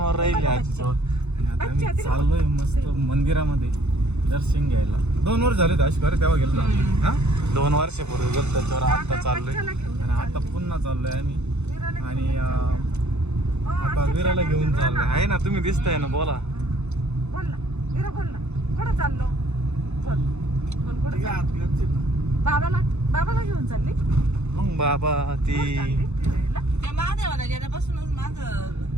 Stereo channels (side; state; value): left; late; 0.82 ms